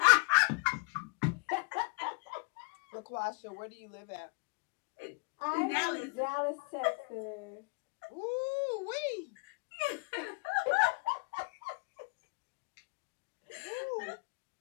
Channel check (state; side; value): quieter; right; 28.7 dB